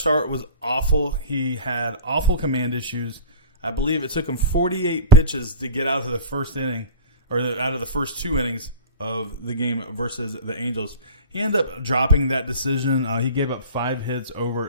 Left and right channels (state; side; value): inverted; both; correlation -0.33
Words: start was awful. He had awful command issues. I believe it took him 48 pitches to get out of the first inning, or out of the first 2 innings of the game versus the Angels. He ended up dropping that decision. He gave up 5 hits